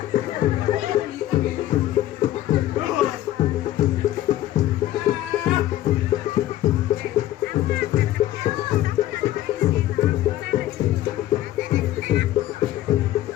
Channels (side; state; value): right; quieter; 13.9 dB